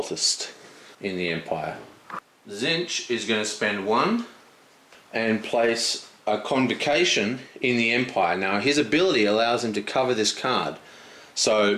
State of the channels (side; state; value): both; identical; correlation 1.00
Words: in the Empire. Tzeentch is going to spend 1 and place a Convocation in the Empire. Now his ability allows him to cover this card, so